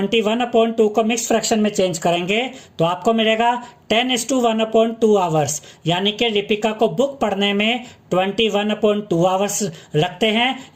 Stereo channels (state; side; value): identical; both; correlation 1.00